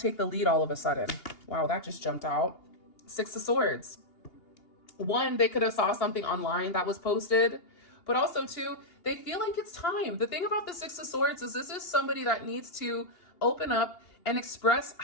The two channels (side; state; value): right; late; 2.8 ms